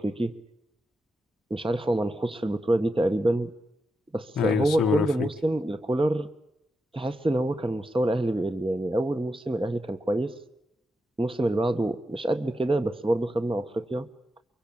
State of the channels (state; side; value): normal; both; correlation 0.87